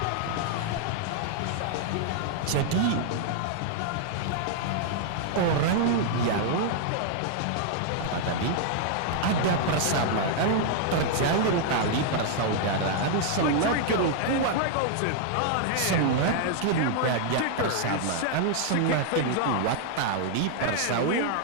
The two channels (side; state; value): both; different; correlation 0.00